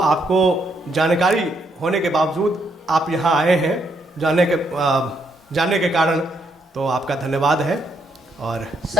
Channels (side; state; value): both; normal; correlation 0.75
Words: जानकारी होने के बावजूद आप यहाँ आए हैं जानने के कारण, तो आपका धन्यवाद है। और